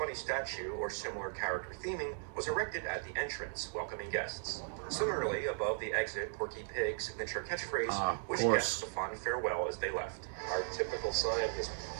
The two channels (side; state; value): left; silent; digital silence